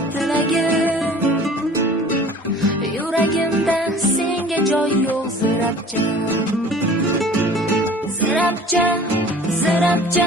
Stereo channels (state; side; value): normal; both; correlation 0.46